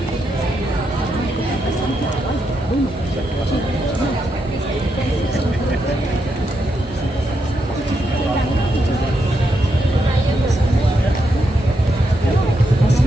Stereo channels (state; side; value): normal; both; correlation 0.82